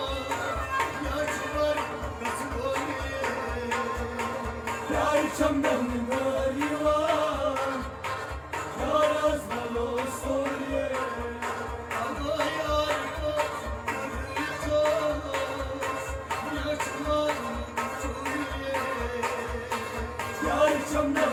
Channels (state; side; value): identical; both; correlation 1.00